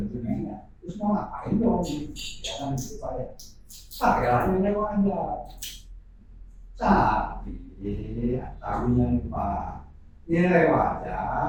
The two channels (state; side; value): identical; both; correlation 1.00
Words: dokumennya. Terus mau ngapain dong? Ya kan gitu Pak ya. Pakai lainnya aja. Tapi yang Pak, nilai